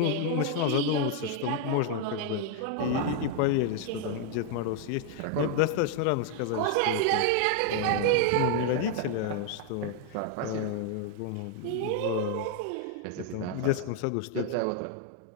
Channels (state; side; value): different; both; correlation 0.00